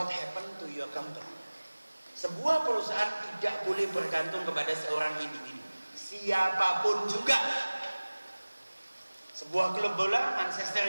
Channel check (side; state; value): both; inverted; correlation -1.00